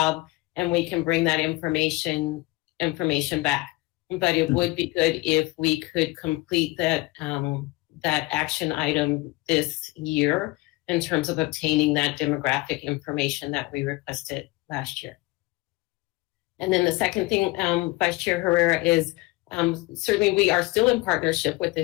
and we can bring that information back. But it would be good if we could complete that action item this year in terms of obtaining that demographic information that we requested last year. And then the second thing, Vice Chair Herrera, is certainly we are still in partnership with the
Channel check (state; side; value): quieter; right; 22.4 dB